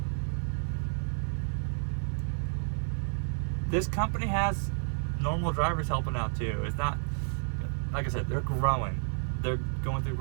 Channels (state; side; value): silent; left; 55 dB below the other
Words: This company has normal drivers helping out too. It's not like I said, they're growing. They're going through